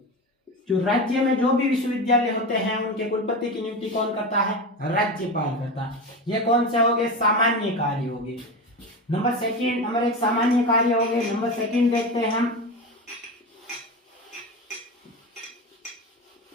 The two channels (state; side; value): normal; both; correlation 0.24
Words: जो राज्य में जो भी विश्वविद्यालय होते हैं उनके कुलपति की नियुक्ति कौन करता है? राज्यपाल करता है। ये कौन से हो गए? सामान्य कार्य हो गए। नंबर 1 सामान्य कार्य हो गए। नंबर 2 देखते हैं हम।